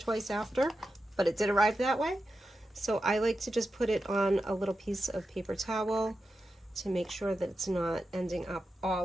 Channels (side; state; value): both; normal; correlation 0.90